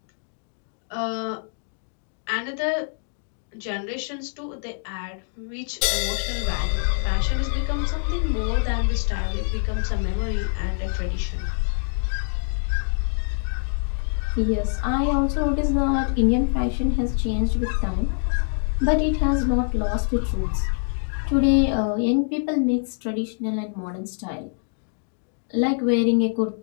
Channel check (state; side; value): silent; right; digital silence